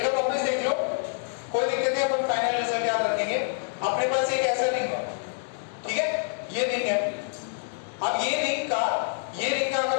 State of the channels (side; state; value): right; silent; digital silence